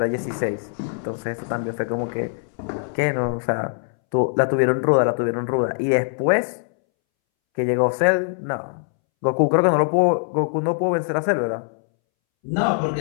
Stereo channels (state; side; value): silent; right; 64 dB below the other